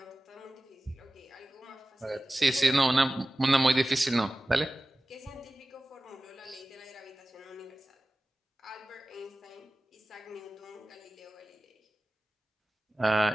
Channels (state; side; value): normal; both; correlation 0.97